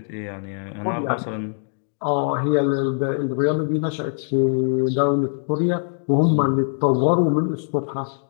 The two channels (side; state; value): right; silent; digital silence